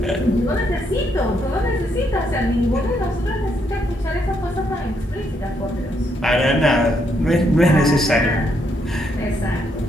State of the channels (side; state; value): both; normal; correlation 0.75